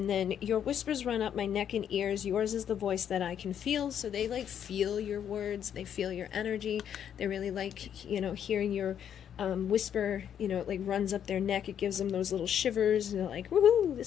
then your whispers run up my neck and ears. Yours is the voice that I can feel. So they like feel your words. They feel your energy. They really like, you know, hearing your whisper, you know, it like runs up their neck. It gives them those little shivers. And they're like, woohoo,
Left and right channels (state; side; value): quieter; right; 9.1 dB